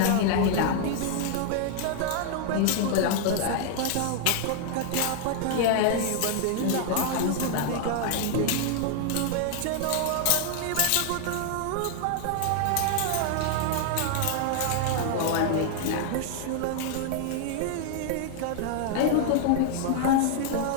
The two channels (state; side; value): different; both; correlation 0.00